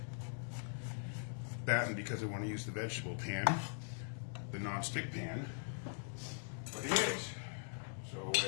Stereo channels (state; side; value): silent; right; digital silence